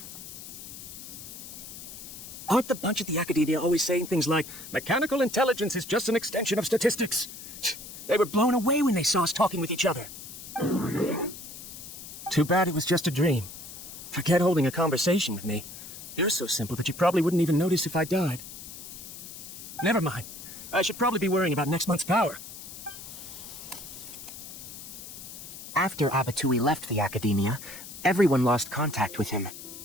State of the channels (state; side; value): noise; left; hiss, 12 dB below the sound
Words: Aren't the bunch at the Akademiya always saying things like, mechanical intelligence is just an extension of statistics? They were blown away when they saw us talking with each other. Too bad it was just a dream. Forget holding a conversation with me. You're so simple that you probably wouldn't even notice if I died. Never mind. I should probably be worrying about next month's power. After Abattouy left the Akademiya, everyone lost contact with him.